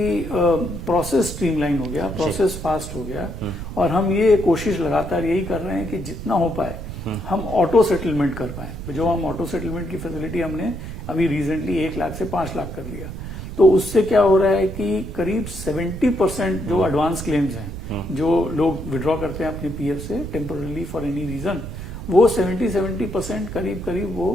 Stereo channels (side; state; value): right; noise; rumble, 9 dB below the sound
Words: प्रोसेस स्ट्रीमलाइन हो गया, प्रोसेस फास्ट हो गया, और हम ये कोशिश लगातार यही कर रहे हैं कि जितना हो पाए हम ऑटो सेटलमेंट कर पाए। जो हम ऑटो सेटलमेंट की फैसिलिटी हमने अभी रिसेंटली 1 लाख से 5 लाख कर लिया, तो उससे क्या हो रहा है कि करीब 70% जो एडवांस क्लेम्स हैं जो लोग विड्रॉ करते हैं अपने पीएफ से टेम्पोरली फॉर एनी रीजन, वो 70% करीब